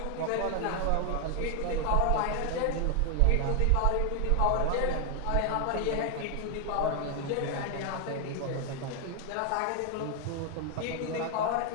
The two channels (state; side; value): different; both; correlation 0.00